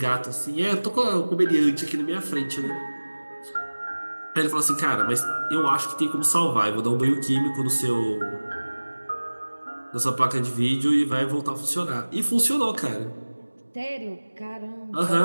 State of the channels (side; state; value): both; inverted; correlation -1.00